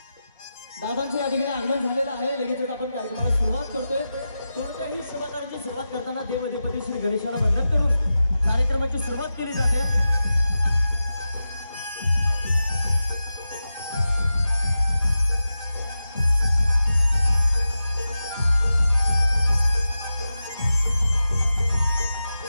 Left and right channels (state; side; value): inverted; both; correlation -0.92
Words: दादांचे या ठिकाणी आगमन झालेलं आहे. लगेच आपण कार्यक्रमाला सुरुवात करतोय. कोणत्याही सहकार्याची सुरुवात करताना देवाधिपती श्री गणेशाला वंदन करून कार्यक्रमाची सुरुवात केली जाते.